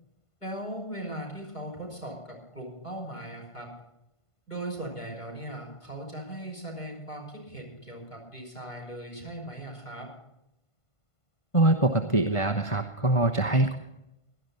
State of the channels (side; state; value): right; late; 1.5 ms